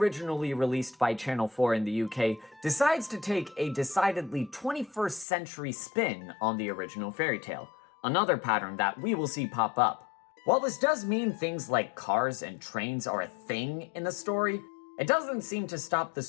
released by Channel 4 in the UK, decides to take a decidedly 21st century spin on the original fairy tale, another pattern that we will see pop up. While this does mean things like cars and trains are a thing in the story, it doesn't seem to stop the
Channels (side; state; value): right; drops out; at 5.2 s